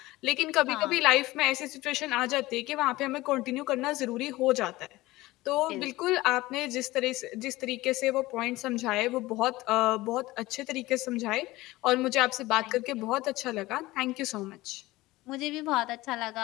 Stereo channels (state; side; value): quieter; right; 18.9 dB